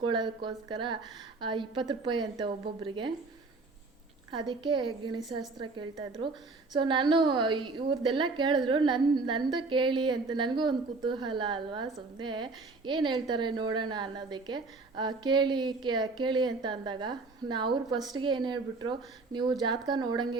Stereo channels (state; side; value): quieter; left; 3.7 dB